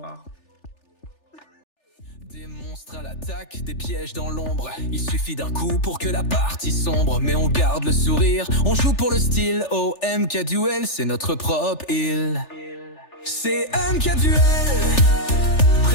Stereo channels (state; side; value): late; right; 3.4 ms